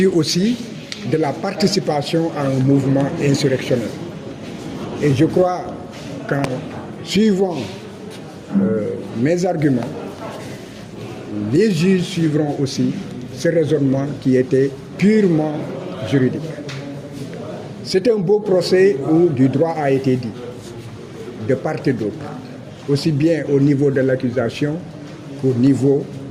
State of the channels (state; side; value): identical; both; correlation 1.00